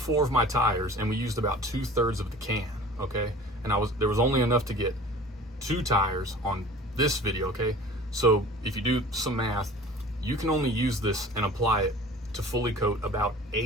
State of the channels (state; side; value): normal; both; correlation 0.44